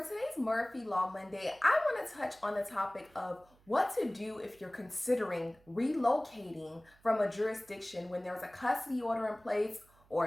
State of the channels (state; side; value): noise; right; hum, 29 dB below the sound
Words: today's Murphy Law Monday, I want to touch on the topic of what to do if you're considering relocating from a jurisdiction when there's a custody order in place